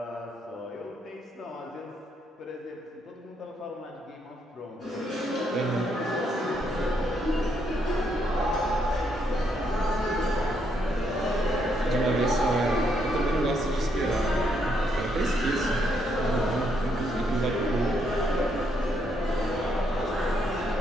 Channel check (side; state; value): both; normal; correlation 0.75